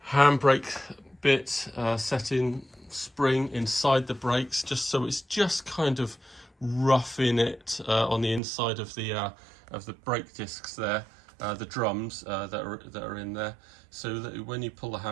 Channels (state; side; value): drops out; left; at 8.4 s